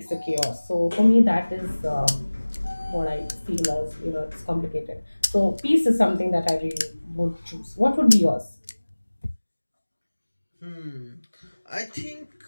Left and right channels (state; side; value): inverted; both; correlation -1.00